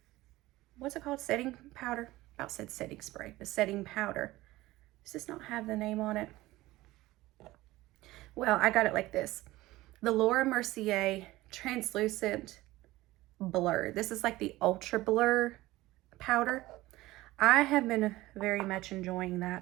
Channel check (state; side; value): quieter; left; 18.0 dB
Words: what's it called? Setting powder? I about said setting spray, but setting powder. Does this not have the name on it? Well, I got it like this. The Laura Mercier Translucent Blur. This is like the Ultra Blur powder. I have been very much enjoying